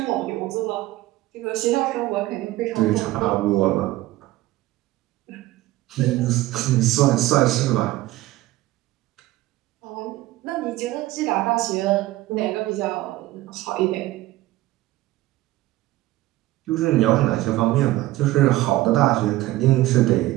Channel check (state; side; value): quieter; left; 17.0 dB